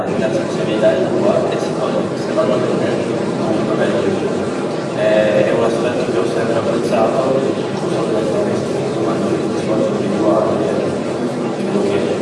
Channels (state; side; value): identical; both; correlation 1.00